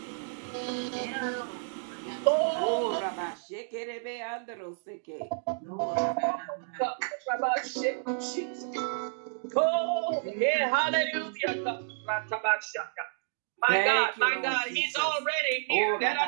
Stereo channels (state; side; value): silent; left; digital silence